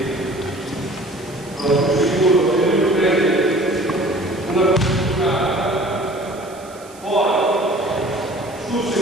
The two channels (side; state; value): right; noise; hiss, 23 dB below the sound